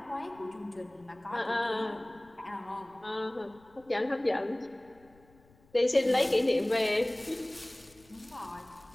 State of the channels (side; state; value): left; noise; rumble, 29 dB below the sound